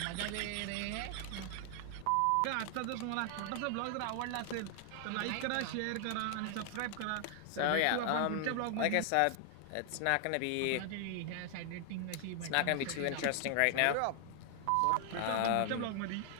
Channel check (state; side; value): different; both; correlation 0.00